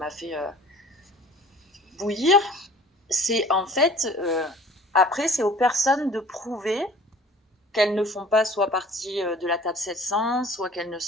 fait bouillir, c'est en fait, après, c'est aux personnes de prouver qu'elles ne font pas soit partie de la table 700, soit qu'elles ne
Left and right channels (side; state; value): both; normal; correlation 0.48